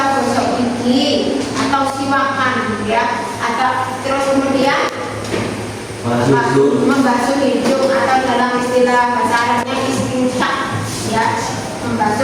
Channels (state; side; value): identical; both; correlation 1.00